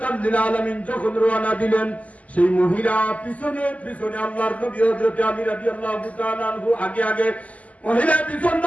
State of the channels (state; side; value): late; right; 0.071 ms